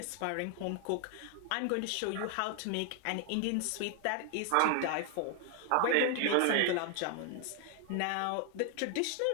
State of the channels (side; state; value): both; different; correlation 0.00